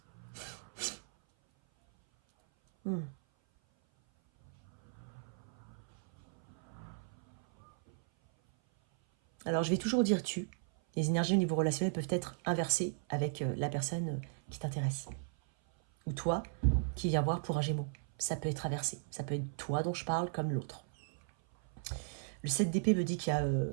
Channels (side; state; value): left; silent; 54 dB below the other